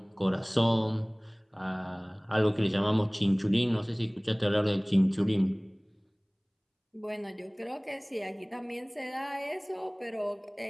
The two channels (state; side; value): identical; both; correlation 1.00